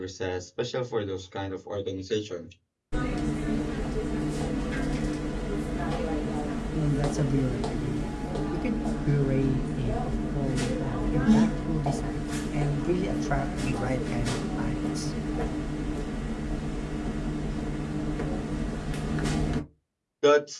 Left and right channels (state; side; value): identical; both; correlation 1.00